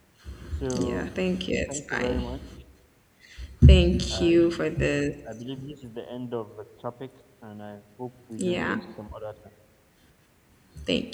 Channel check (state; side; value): identical; both; correlation 1.00